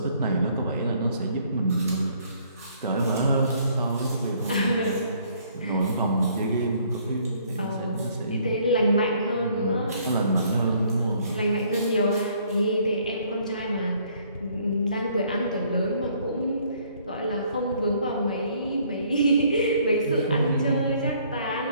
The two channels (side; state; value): both; inverted; correlation -0.63